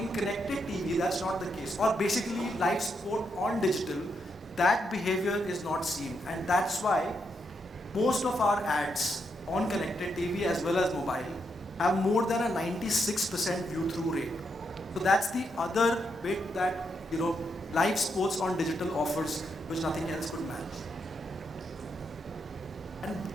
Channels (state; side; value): normal; both; correlation 0.80